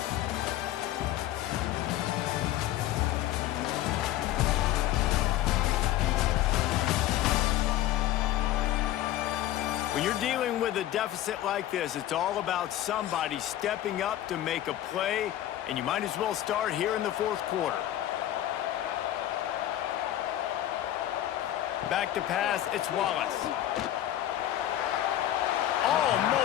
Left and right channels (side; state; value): right; quieter; 13.2 dB